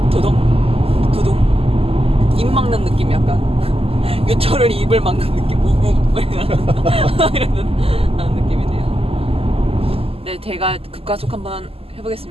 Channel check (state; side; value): late; left; 0.28 ms